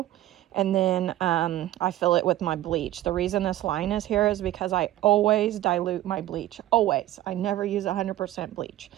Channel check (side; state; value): left; quieter; 14.5 dB